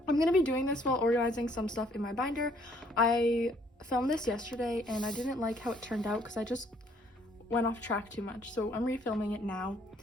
I'm going to be doing this while organizing some stuff in my binder. I filmed this yesterday and I didn't like how it turned out because I just went off track too much, so I'm refilming it now.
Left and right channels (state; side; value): normal; both; correlation 0.64